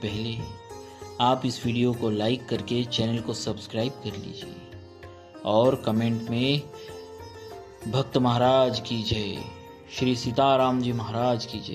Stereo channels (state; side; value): identical; both; correlation 1.00